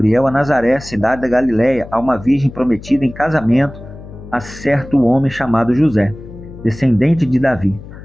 a Nazaré, cidade da Galiléia, a uma virgem prometida em casamento a certo homem chamado José, descendente de Davi.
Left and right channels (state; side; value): noise; left; hum, 15 dB below the sound